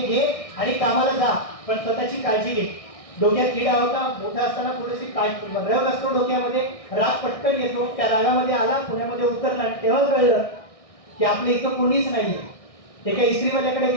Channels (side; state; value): right; late; 1.6 ms